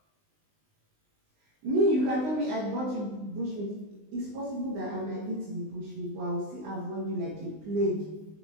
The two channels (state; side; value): late; left; 19 ms